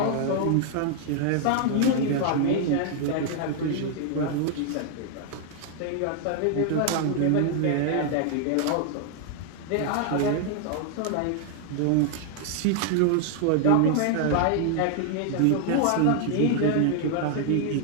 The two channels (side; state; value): both; different; correlation 0.00